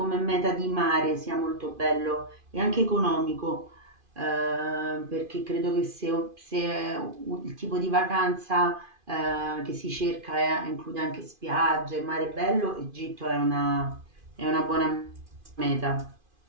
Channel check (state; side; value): late; left; 2.5 ms